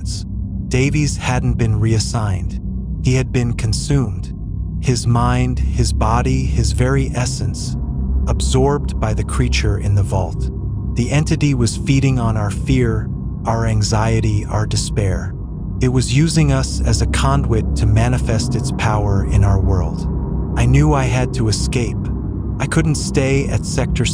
Davies hadn't been reassigned. He had been consumed. His mind, his body, his very essence, absorbed by the creature in the vault. The entity was feeding on our fear, our anxiety, our despair. It was using us as a conduit to manifest its power in our world. I knew I had to escape. I couldn't stay at Sector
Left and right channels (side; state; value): both; identical; correlation 1.00